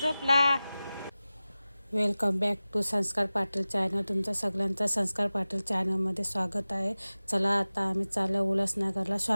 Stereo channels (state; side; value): inverted; both; correlation -0.97